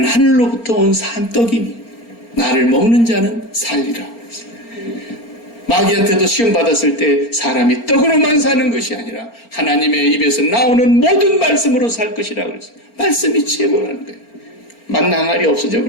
하늘로부터 온 산떡이니 나를 먹는 자는 살리라. 마귀한테도 시험 받았을 때 사람이 떡으로만 사는 것이 아니라 하나님의 입에서 나오는 모든 말씀으로 살 것이라고 그랬어요. 말씀이 최고라는 거예요. 만나 항아리 없어져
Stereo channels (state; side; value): late; right; 4.4 ms